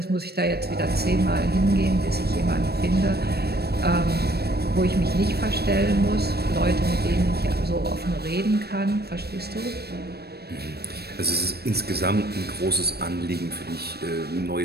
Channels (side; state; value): left; late; 0.47 ms